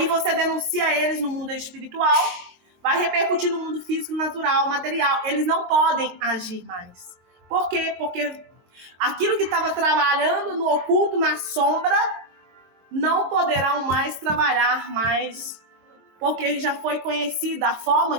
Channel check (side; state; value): left; late; 23 ms